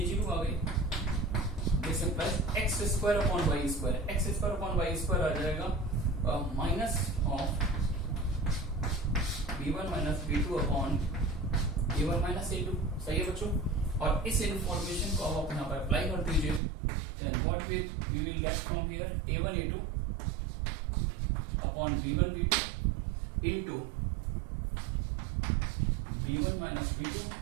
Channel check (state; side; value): drops out; left; at 16.6 s